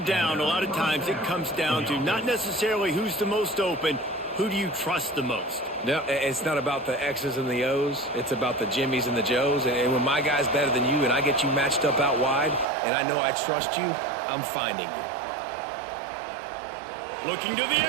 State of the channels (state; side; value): drops out; left; at 12.7 s